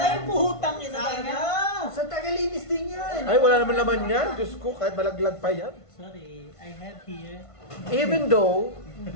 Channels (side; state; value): right; late; 1.5 ms